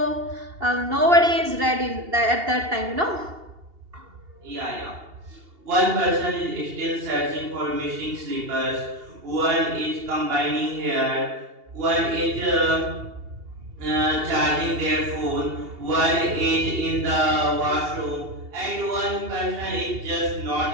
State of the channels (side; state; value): left; late; 2.8 ms